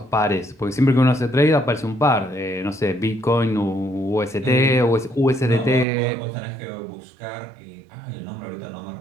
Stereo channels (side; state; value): left; drops out; at 5.9 s